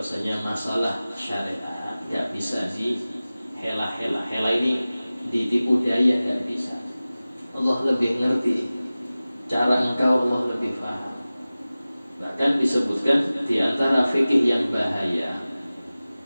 masalah syariat enggak bisa dihela-hela. Hela ini ditipu daya, enggak bisa. Allah lebih ngerti cara engkau, Allah lebih paham. Bahkan disebutkan di antara fikih yang bahaya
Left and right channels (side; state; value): both; inverted; correlation -0.97